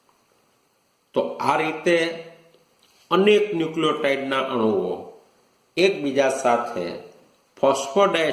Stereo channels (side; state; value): both; identical; correlation 1.00